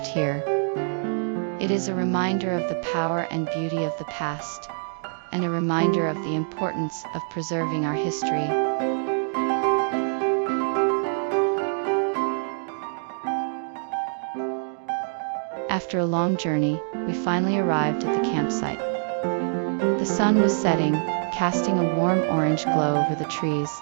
here. It is a reminder of the power and beauty of the past, and a reminder of the importance of preserving our history. After a long journey, we finally arrived at the campsite. The sun was setting, casting a warm orange glow over the trees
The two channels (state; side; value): silent; left; digital silence